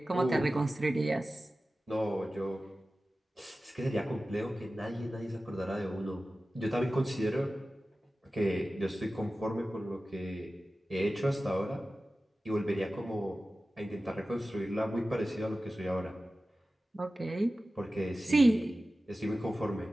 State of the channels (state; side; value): normal; both; correlation 0.95